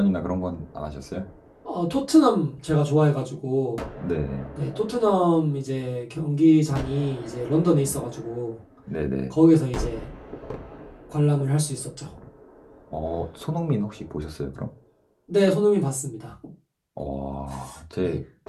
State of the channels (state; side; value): identical; both; correlation 1.00